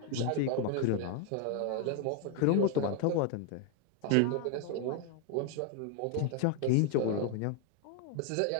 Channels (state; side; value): different; both; correlation 0.01